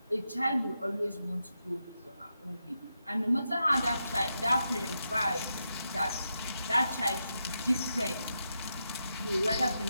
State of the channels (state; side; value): inverted; both; correlation -0.86